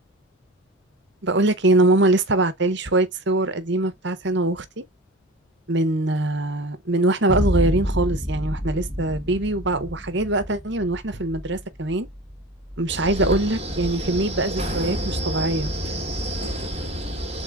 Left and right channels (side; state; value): both; normal; correlation 0.34